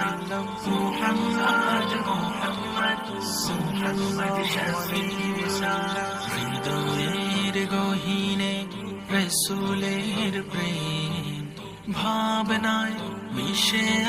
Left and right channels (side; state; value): both; identical; correlation 1.00